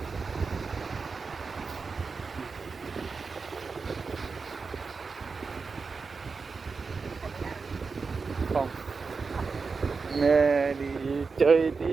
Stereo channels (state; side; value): quieter; left; 4.7 dB